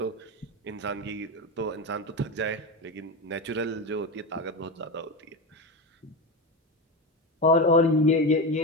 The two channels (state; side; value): normal; both; correlation 0.18